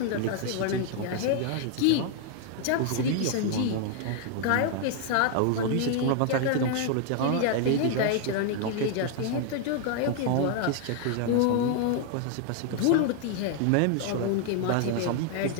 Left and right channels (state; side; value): different; both; correlation 0.00